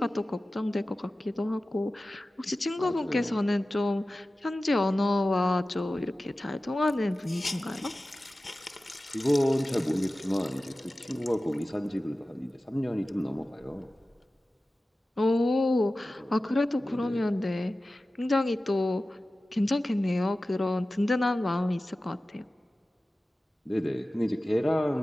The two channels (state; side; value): normal; both; correlation 0.96